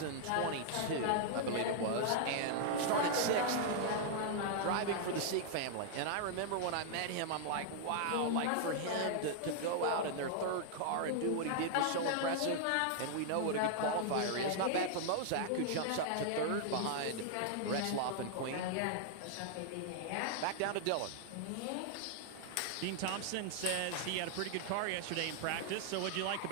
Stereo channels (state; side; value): different; both; correlation -0.01